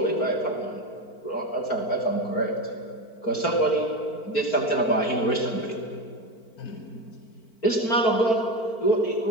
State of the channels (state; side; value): late; right; 4.5 ms